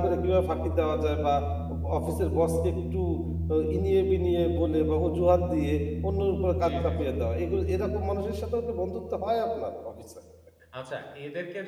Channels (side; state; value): both; identical; correlation 1.00